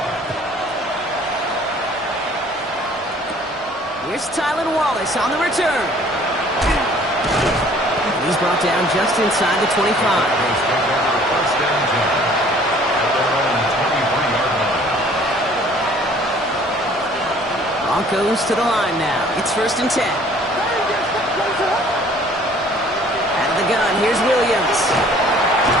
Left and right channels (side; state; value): both; normal; correlation 0.55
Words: Here's Tylan Wallace on the return. He's brought down just inside the 25. Broncos to the line now. It's 1st and 10. Out of the gun, here's Williams.